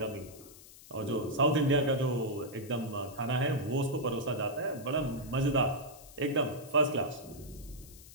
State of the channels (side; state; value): left; noise; hiss, 19 dB below the sound